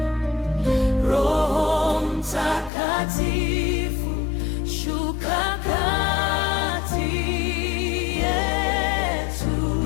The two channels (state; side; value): drops out; right; at 2.7 s